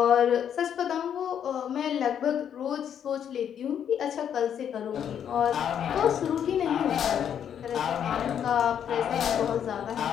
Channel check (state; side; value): quieter; right; 8.9 dB